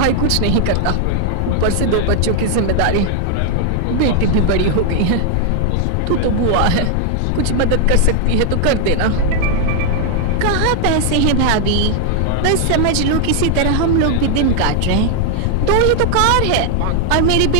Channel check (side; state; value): both; different; correlation 0.00